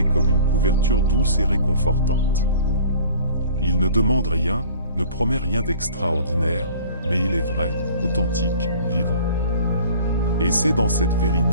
comme une couverture douce et réconfortante. Il ne demande rien, ne promet rien d'extraordinaire, mais il est vrai, authentique, vivant. Et c'est dans cette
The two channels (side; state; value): both; inverted; correlation -0.46